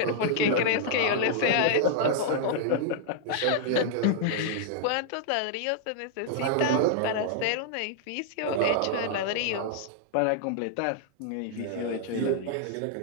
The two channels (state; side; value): different; both; correlation -0.01